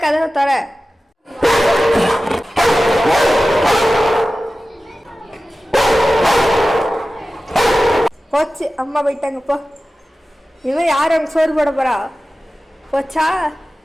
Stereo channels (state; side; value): normal; both; correlation 0.95